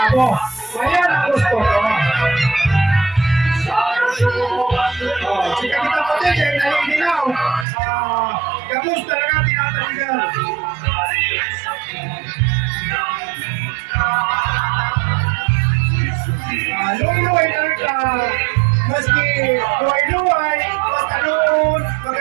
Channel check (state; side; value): drops out; left; at 7.7 s